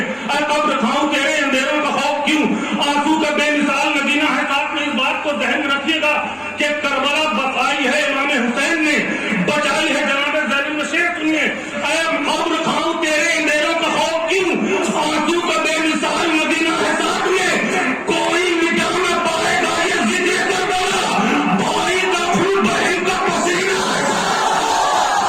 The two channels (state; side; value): identical; both; correlation 1.00